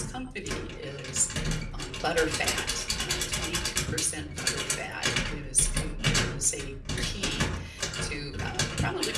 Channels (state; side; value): identical; both; correlation 1.00